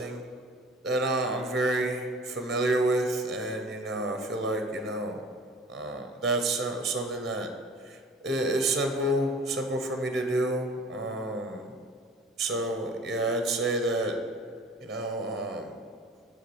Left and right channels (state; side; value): normal; both; correlation 0.45